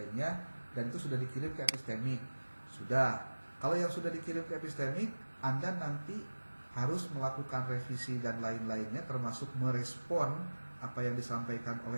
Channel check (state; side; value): inverted; both; correlation -1.00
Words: dan itu sudah dikirim ke epistemik. Sudah. Kalau yang sudah dikirim ke epistemik, Anda nanti harus melakukan revisi dan lain-lainnya termasuk merespon apa yang disampaikan